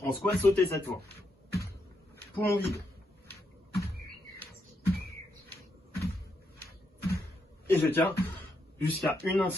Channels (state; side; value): normal; both; correlation 0.80